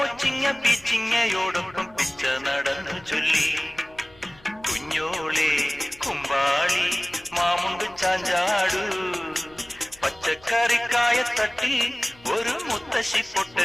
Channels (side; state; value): left; noise; hum, 26 dB below the sound